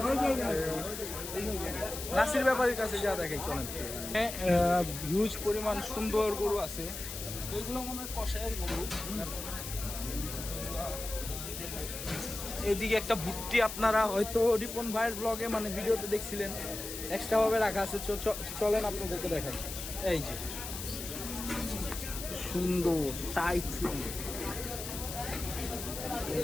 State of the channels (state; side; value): noise; left; hiss, 8 dB below the sound